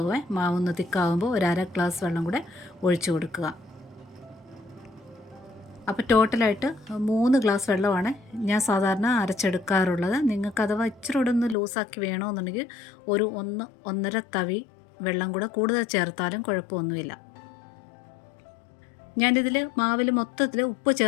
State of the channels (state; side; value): drops out; right; at 11.6 s